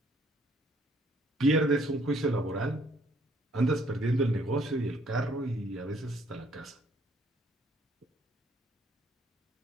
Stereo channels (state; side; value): normal; both; correlation 0.64